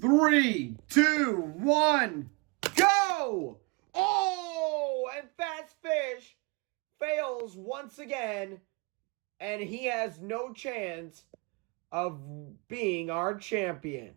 3, 2, 1, go! Oh! And Fast Fish fails once again, and he has no chance of being our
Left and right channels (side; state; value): left; quieter; 30.0 dB